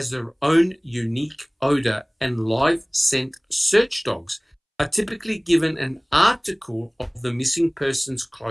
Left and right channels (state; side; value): identical; both; correlation 1.00